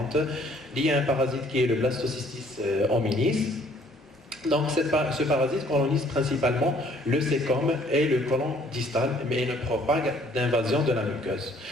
liée à un parasite qui est le Blastocystis hominis. Donc ce parasite colonise principalement le cécome et le côlon distal, mais il ne propague d'invasion de la muqueuse.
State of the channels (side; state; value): both; normal; correlation 0.60